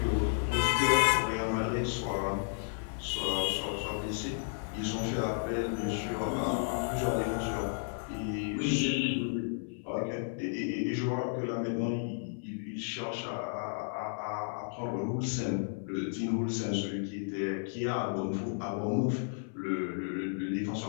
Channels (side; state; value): right; silent; 56 dB below the other